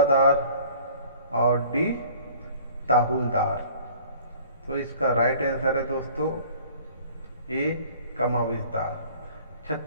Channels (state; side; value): inverted; both; correlation -0.51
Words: और डी ताहुलदार। तो इसका राइट आंसर है दोस्तों ए कमाविजदार।